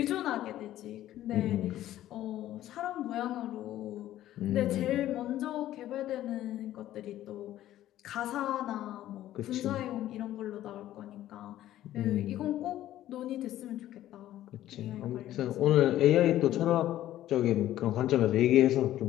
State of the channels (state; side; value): quieter; right; 13.4 dB